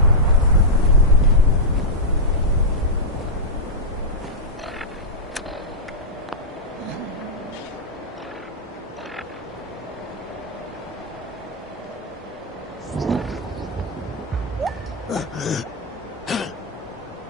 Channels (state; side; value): normal; both; correlation -0.07